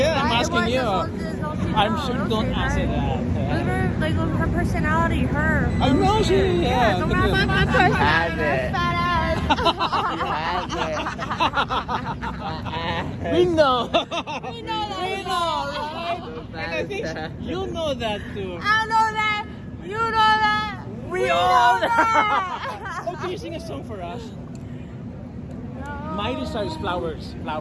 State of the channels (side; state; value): both; identical; correlation 1.00